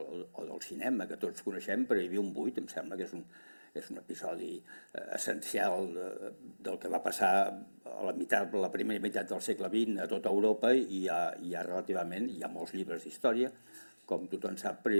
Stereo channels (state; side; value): inverted; both; correlation -1.00